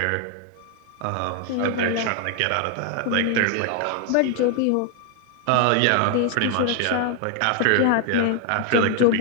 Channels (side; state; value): both; different; correlation 0.01